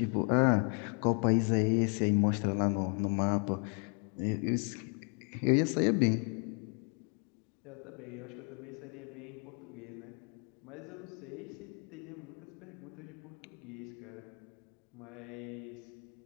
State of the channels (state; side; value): quieter; right; 39.4 dB